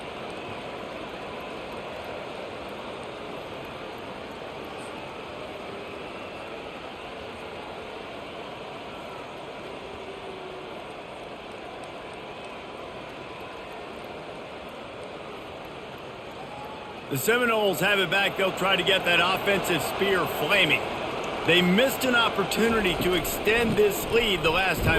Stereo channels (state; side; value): identical; both; correlation 1.00